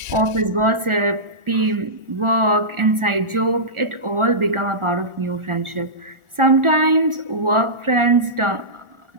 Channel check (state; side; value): late; left; 1.4 ms